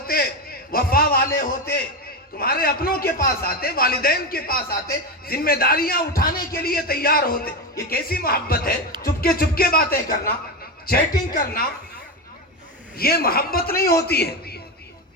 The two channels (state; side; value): normal; both; correlation 0.15